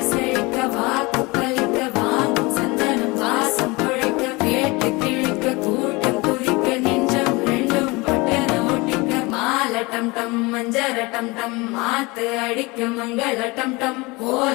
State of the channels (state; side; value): quieter; right; 24.5 dB